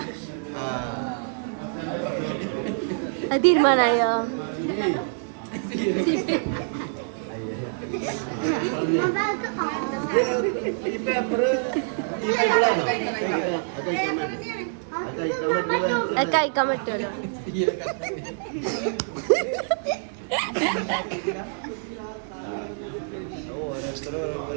അത് തീരുമാനായോ? കഴിക്കാൻ പറ്റുമല്ലോ.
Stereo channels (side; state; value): left; silent; digital silence